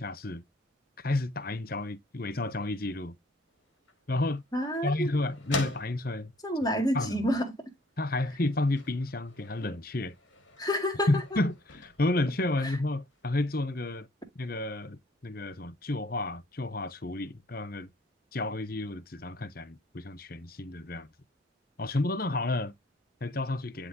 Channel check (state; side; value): normal; both; correlation 0.60